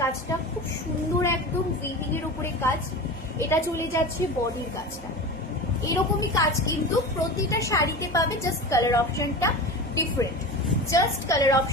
কাজটা খুব সুন্দর, একদম উইভিং এর উপরে কাজ। এটা চলে যাচ্ছে বডির কাজটা, এরকমই কাজ কিন্তু প্রতিটা শাড়িতে পাবে, জাস্ট কালার অপশনটা ডিফারেন্ট,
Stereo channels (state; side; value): normal; both; correlation 0.29